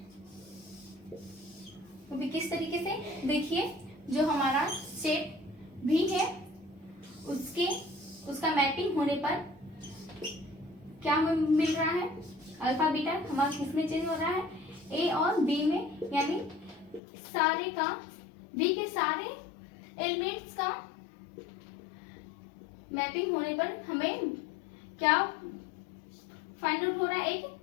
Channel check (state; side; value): drops out; right; at 17.0 s